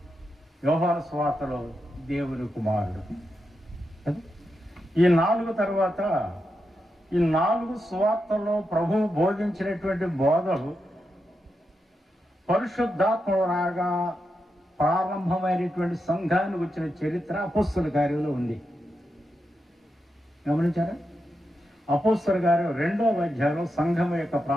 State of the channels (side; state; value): both; normal; correlation 0.86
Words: యోహాను సువార్తలో దేవుని కుమారుడు. ఈ 4 తర్వాత ఈ 4 సువార్తల్లో ప్రభువు బోధించినటువంటి బోధలు పరిశుద్ధాత్మ రాగా ప్రారంభమైనటువంటి సంఘానికి వచ్చిన చరిత్ర అపోస్తలుల కార్యంలో ఉంది. గమనించారా? అపోస్తలుల కార్యం 2వ అధ్యాయంలో సంఘం యొక్క